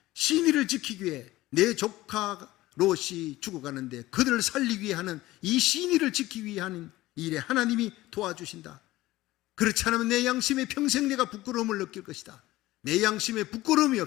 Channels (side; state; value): right; quieter; 17.4 dB